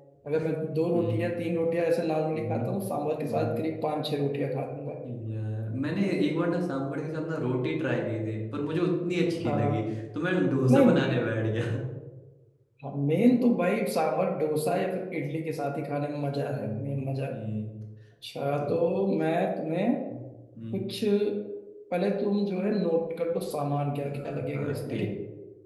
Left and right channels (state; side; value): identical; both; correlation 1.00